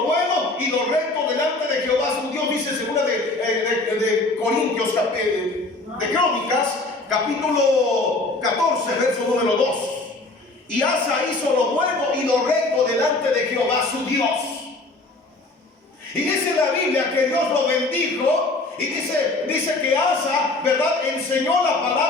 bueno y lo recto delante de Jehová su Dios, dice segunda de Corintios, de Crónicas, capítulo 14, verso número 2. Y Asa hizo lo bueno y lo recto delante de Jehová su Dios. Y dice la Biblia que Dios lo bendijo. Y dice que Asa, ¿verdad?, enseñó la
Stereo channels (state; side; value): quieter; right; 3.2 dB